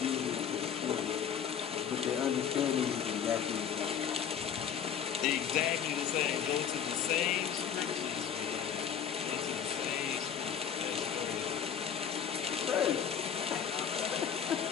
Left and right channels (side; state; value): right; quieter; 8.2 dB